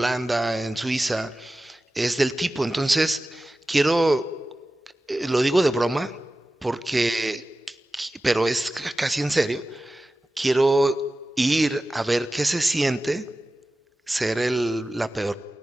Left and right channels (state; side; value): normal; both; correlation 0.95